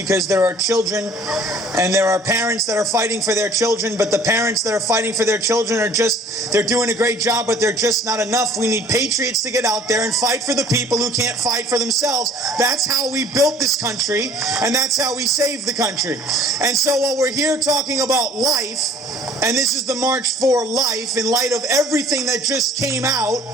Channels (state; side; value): normal; both; correlation 0.53